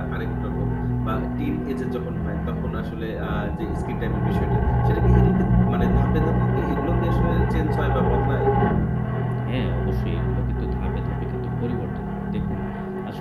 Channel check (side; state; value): both; identical; correlation 1.00